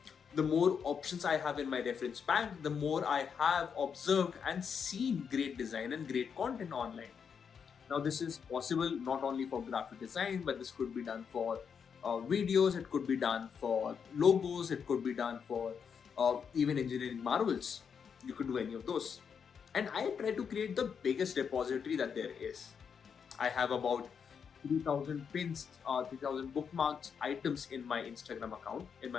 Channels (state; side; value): quieter; right; 6.8 dB